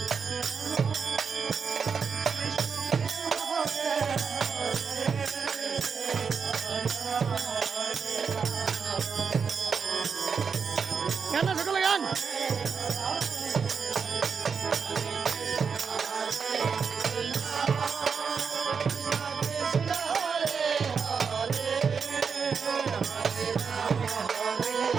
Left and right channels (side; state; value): left; quieter; 6.0 dB